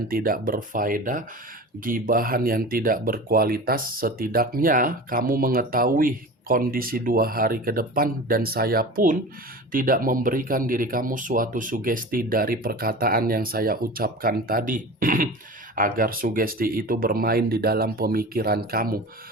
tidak berfaedah, gibahan yang tidak berkualitas. Setidaknya kamu mengetahui kondisi 2 hari ke depan, dan saya pun tidak memberikan diri kamu suatu sugesti dari perkataan yang saya ucapkan tadi agar sugesti itu bermain di dalam pemikiran kamu.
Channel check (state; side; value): normal; both; correlation 0.34